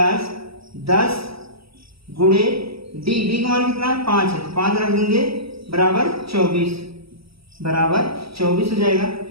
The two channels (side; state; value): left; late; 0.76 ms